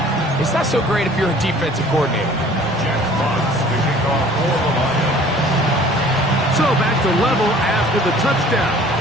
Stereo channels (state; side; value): normal; both; correlation 0.51